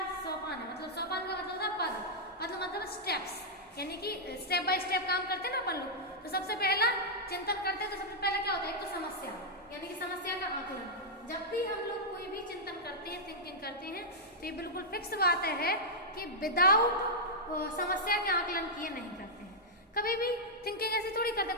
सोपान है, मतलब सोपान का मतलब था पद, मतलब स्टेप्स, यानी कि स्टेप बाय स्टेप काम करते हैं ना अपन लोग। तो सबसे पहला चिंतन करते हैं तो सबसे पहले क्या होता है, एक तो समस्या, यानी कि समस्या का आकलन। जब भी हम लोग कोई भी चिंतन करते हैं, थिंकिंग करते हैं, तो ये बिल्कुल फिक्स बात है कि विदाउट समस्या के आकलन किए नहीं करते हैं। कभी भी थिंकिंग ऐसी थोड़ी करते,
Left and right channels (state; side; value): normal; both; correlation -0.07